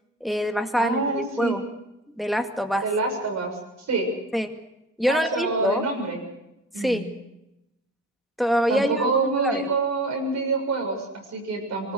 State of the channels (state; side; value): normal; both; correlation 0.36